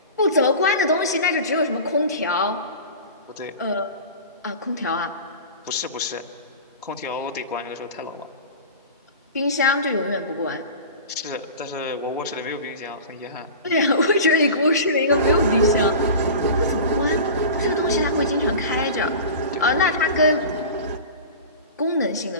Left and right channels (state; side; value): inverted; both; correlation -0.34